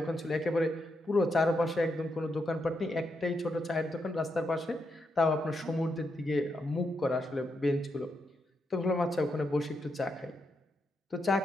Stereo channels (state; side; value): normal; both; correlation 0.82